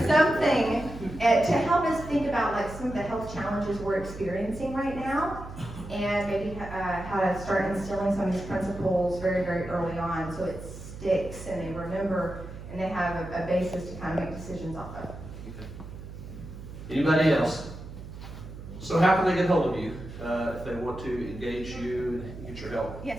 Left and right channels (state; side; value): noise; right; hum, 12 dB below the sound